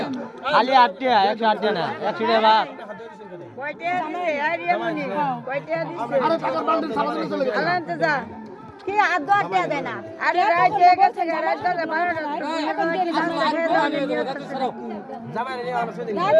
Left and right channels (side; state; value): both; identical; correlation 1.00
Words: খালি 8 টাকা 108 টাকা না 100 টাকা ভাগ কয়টা দিছে আরিয়া মনি কয়টা দিছে আরে টাকার বান্ডেল সামনে চলে গেল আনতে যা কি আদো আটটা দেয় না আরে রাইতে গেছে রাইতে 12টা এখন দেরি জামাই নিয়ে আমার সাথে না